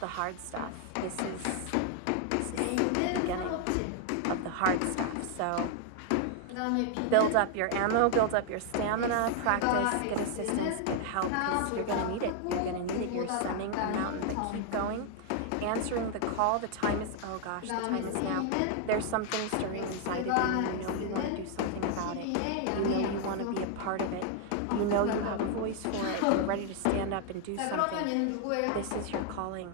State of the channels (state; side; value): different; both; correlation 0.00